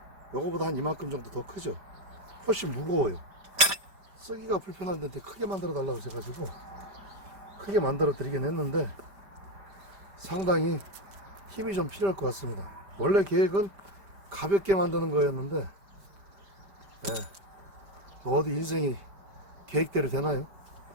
요거보다 한 이만큼 정도 더 크죠. 훨씬 무거워요. 쓰기가 불편한 데인데 크게 만들어 달라고 해가지고 크게 만들어 드리긴 했는데 상당히 힘이 좀 필요할 것 같습니다. 원래 계획은 가볍게 만드는 거였는데 뭐 어디 인생이 계획대로 되나요?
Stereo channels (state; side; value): late; left; 5.1 ms